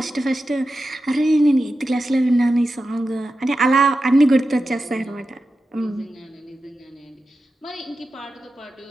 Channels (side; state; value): both; normal; correlation 0.91